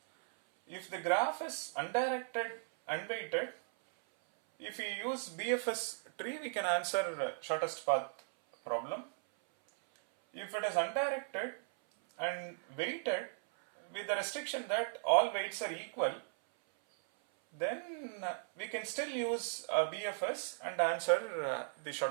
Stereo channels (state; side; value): silent; left; 53 dB below the other